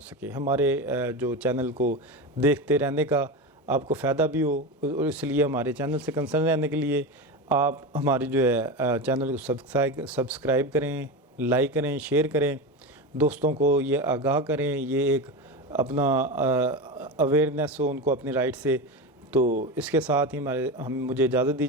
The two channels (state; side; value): normal; both; correlation 0.21